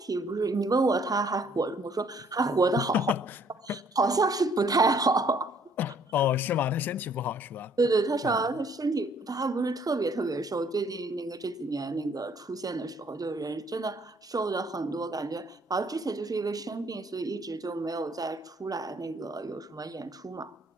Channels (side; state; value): both; normal; correlation 0.62